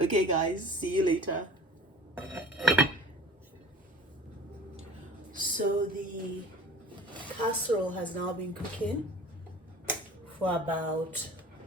guys, see you later. So the casserole has now been cooking for about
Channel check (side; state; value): both; normal; correlation 0.43